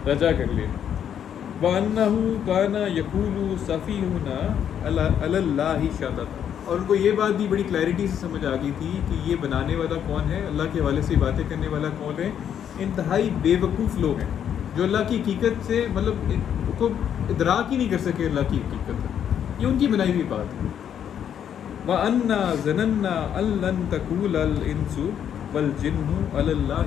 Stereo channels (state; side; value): quieter; right; 9.1 dB